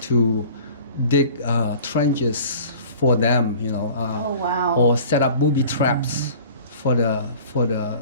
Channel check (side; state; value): both; inverted; correlation -0.45